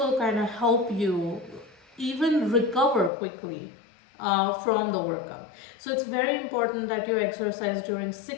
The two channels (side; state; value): right; drops out; at 3.1 s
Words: kind of help you even recover quickly from the workout. So it's very important that you exercise during